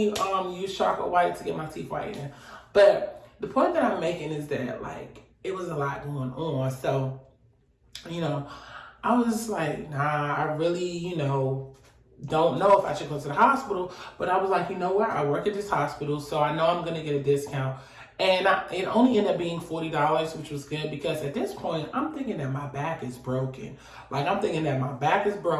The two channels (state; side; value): identical; both; correlation 1.00